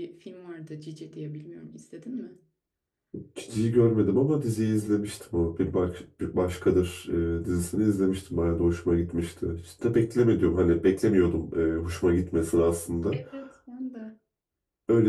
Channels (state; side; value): identical; both; correlation 1.00